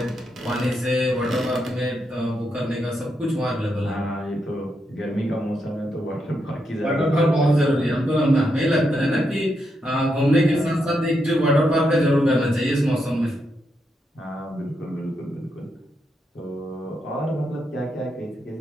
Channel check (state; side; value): normal; both; correlation 0.82